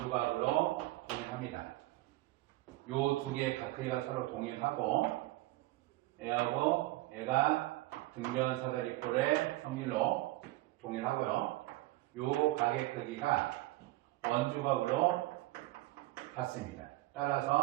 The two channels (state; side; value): quieter; left; 18.4 dB